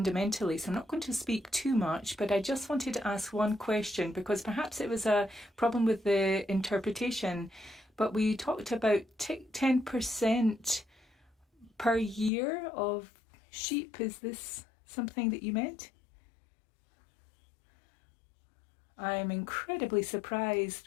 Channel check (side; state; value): right; drops out; at 12.3 s